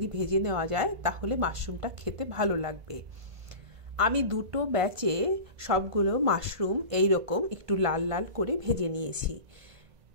ভেজে নেওয়া যায় তাহলে মাশরুমটা খেতে ভালো লাগবে। আমি 2টো ব্যাচে সবগুলো মাশরুম এই রকম একটু লাল লাল করে ভেজে নিয়েছি।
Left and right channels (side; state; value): left; late; 1.5 ms